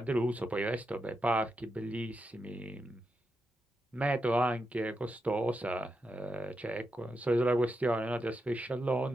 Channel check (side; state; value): both; normal; correlation 0.86